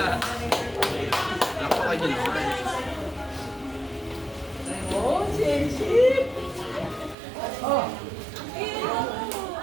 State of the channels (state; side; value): drops out; left; at 7.2 s